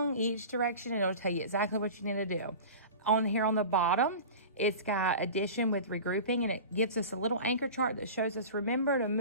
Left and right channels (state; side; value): inverted; both; correlation -0.35